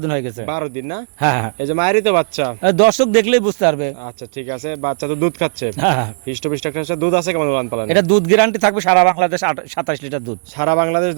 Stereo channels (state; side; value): silent; left; digital silence